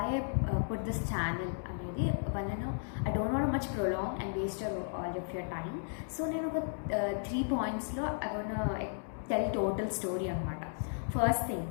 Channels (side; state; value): right; silent; digital silence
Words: I put this channel అనేది వలన I don't want to much prolong and waste all of your time. So నేను ఒక 3 pointsలో I want to tell total story అన్నమాట. First thing,